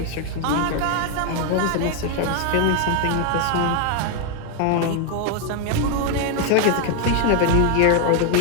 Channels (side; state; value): both; different; correlation 0.00